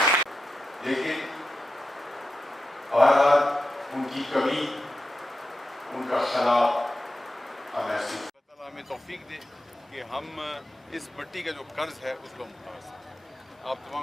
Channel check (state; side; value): normal; both; correlation 0.90